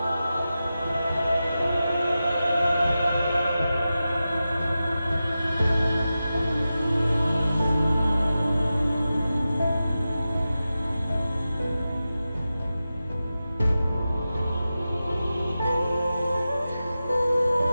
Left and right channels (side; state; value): both; inverted; correlation -0.93